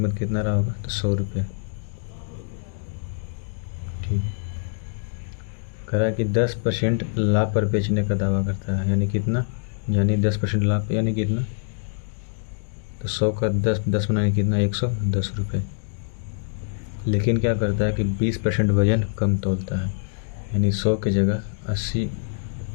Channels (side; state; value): right; silent; digital silence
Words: कितना रहा होगा, तो 100 रुपये। ठीक है। कह रहा है कि 10% लाभ पर बेचने का दावा करता है, यानी कितना, यानी 10% लाभ यानी कितना, तो 100 का 10 बनाने कितना, 110 रुपये। लेकिन क्या करता है कि 20% वजन कम तोलता है, यानी 100 की जगह 80,